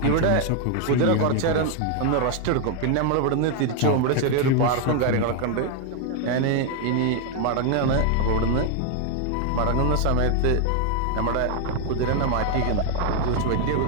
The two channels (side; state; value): both; different; correlation 0.01